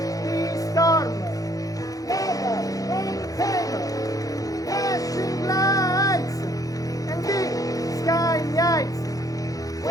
the storm, never maintain, flashing lights and big sky lights.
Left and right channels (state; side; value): late; right; 0.17 ms